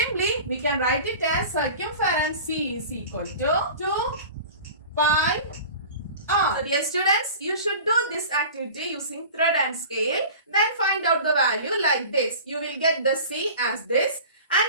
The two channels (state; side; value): inverted; both; correlation -0.38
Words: we can write it as circumference C is equal to 2 pi r. So dear students, you should do this activity using thread and scale. Then find out the value like this. You will get the C as this.